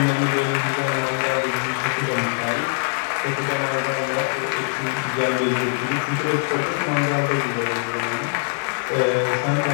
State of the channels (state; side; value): silent; right; 57 dB below the other